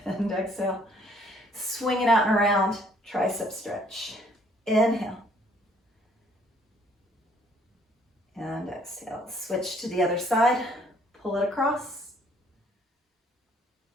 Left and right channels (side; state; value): both; normal; correlation 0.63